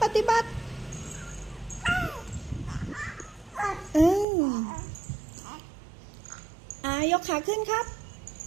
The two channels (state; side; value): drops out; left; at 4.2 s